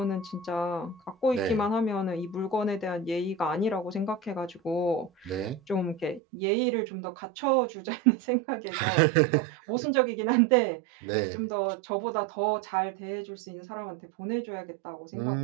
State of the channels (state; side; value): drops out; left; at 6.2 s